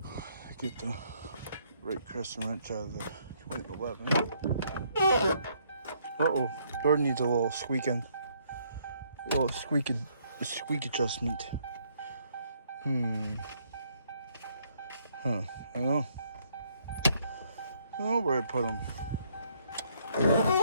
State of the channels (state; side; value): inverted; both; correlation -0.69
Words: I get the right crescent wrench out of the 2011. Uh-oh. Door needs a little squeaking. A little squeak adjustment. Huh. I don't know. I don't know where I put them.